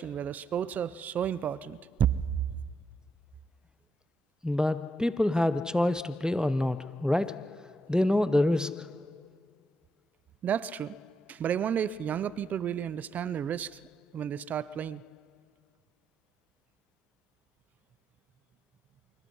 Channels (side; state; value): both; normal; correlation 0.82